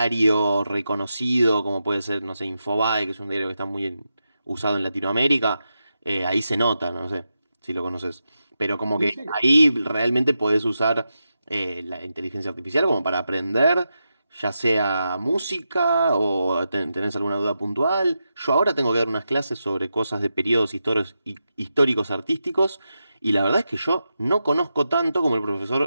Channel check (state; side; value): inverted; both; correlation -0.88